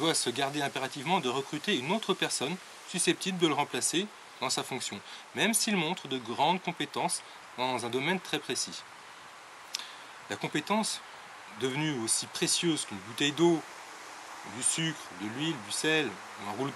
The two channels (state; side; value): identical; both; correlation 1.00